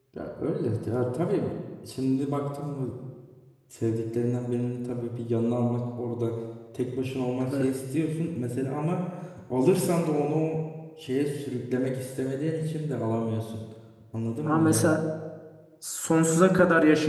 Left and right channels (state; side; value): identical; both; correlation 1.00